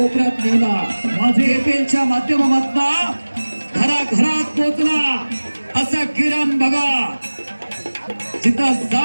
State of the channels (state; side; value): inverted; both; correlation -1.00